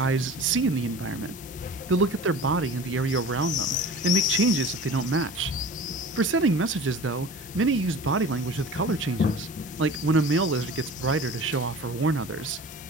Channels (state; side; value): normal; both; correlation 0.39